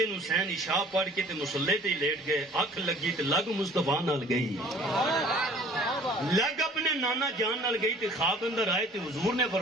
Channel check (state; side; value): normal; both; correlation 0.51